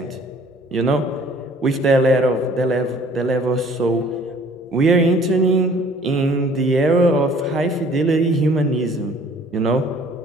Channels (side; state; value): both; normal; correlation 0.54